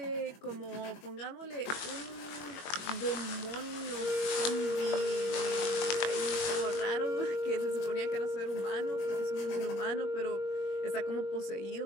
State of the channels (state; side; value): late; right; 21 ms